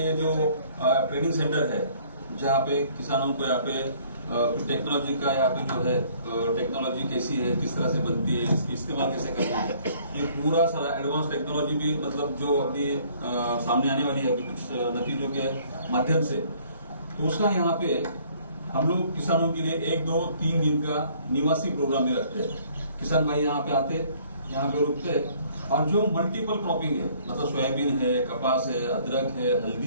जो ट्रेनिंग सेंटर है, जहाँ पे किसानों को यहाँ पे टेक्नोलॉजी का यहाँ पे जो है टेक्नोलॉजी कैसी है, किस तरह से बनती है, इसकी इस्तेमाल कैसे करना है, ये पूरा सारा एडवांस टेक्नोलॉजी भी मतलब जो अभी सामने आने वाली है अभी कुछ नतीजों के माध्यम से, तो उसका यहाँ पे हम लोग किसानों के लिए 1, 2, 3 दिन का निवासी प्रोग्राम में रखते हैं। किसान भाई यहाँ पे आते, यहाँ पे रुकते, और जो मल्टीपल क्रॉपिंग है, मतलब सोयाबीन है, कपास है, अदरक है,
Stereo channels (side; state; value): both; inverted; correlation -0.59